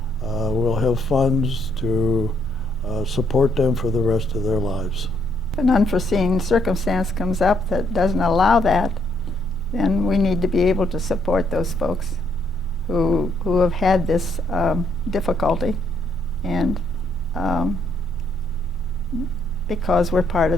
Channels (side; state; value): both; normal; correlation 0.72